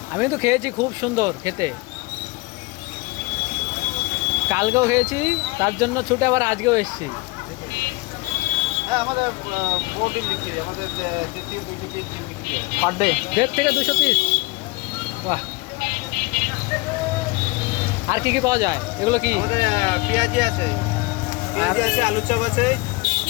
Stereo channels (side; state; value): right; quieter; 23.7 dB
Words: আমি তো খেয়েছি, খুব সুন্দর খেতে। কালকেও খেয়েছি, তার জন্য ছুটে আবার আজকেও এসেছি। হ্যাঁ, আমাদের বড় ডিম বিক্রি হয়। আমাদের 1.5 থেকে 200 পিস ডিম বিক্রি হয়। পার ডে 1.5 থেকে 200 পিস? বাহ। আর কি কি পাওয়া যায়? এগুলো কি? আমাদের পেঁয়াজি আছে, আলুর চপ আছে,